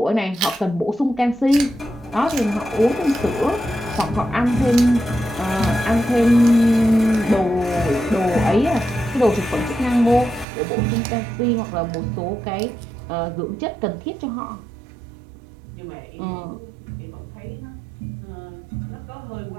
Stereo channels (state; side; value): drops out; left; at 10.5 s